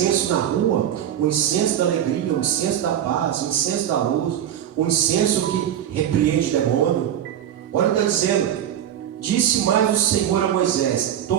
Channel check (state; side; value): quieter; left; 10.4 dB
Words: na rua. O incenso da alegria, o incenso da paz, o incenso da luz, o incenso que repreende demônio. Olha o que está dizendo. Disse mais o Senhor a Moisés: